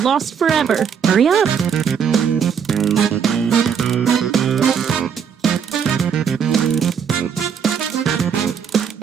forever. Hurry up.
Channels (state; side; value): quieter; left; 7.3 dB